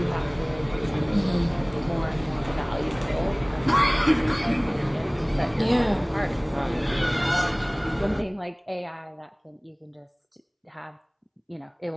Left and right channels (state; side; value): identical; both; correlation 1.00